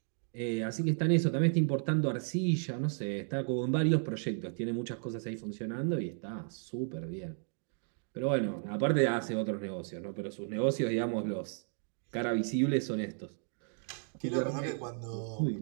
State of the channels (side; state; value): left; silent; 55 dB below the other